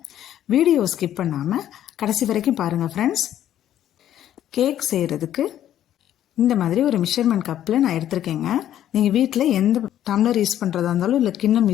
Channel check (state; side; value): quieter; right; 11.5 dB